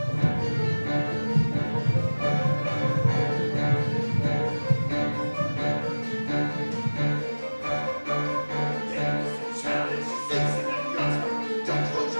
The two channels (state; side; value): inverted; both; correlation -1.00